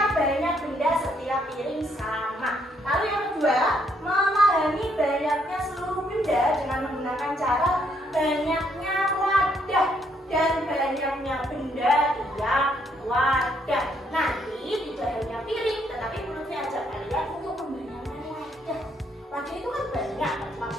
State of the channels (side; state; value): both; normal; correlation 0.71